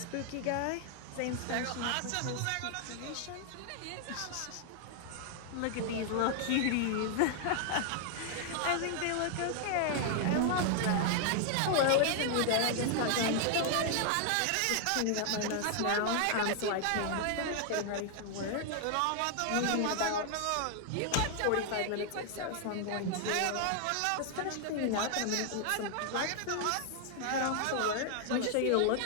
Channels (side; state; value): both; different; correlation 0.00